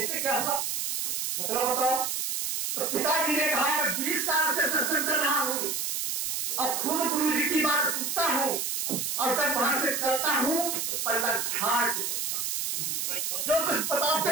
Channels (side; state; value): right; noise; hiss, 1 dB below the sound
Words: क्या हुआ मतलब बताओ। तो पिताजी ने कहा मैं 20 साल से सत्संग कर रहा हूं और खुद गुरु जी की बात सुनता हूं और जब वहां से चलता हूं तो पल्ला झाड़ के चलता हूं, जो कुछ बताते